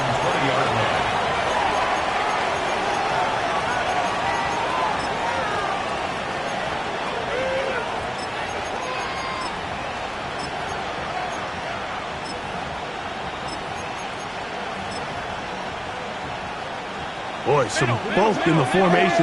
20-yard line. Boy, some bulk in the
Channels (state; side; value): identical; both; correlation 1.00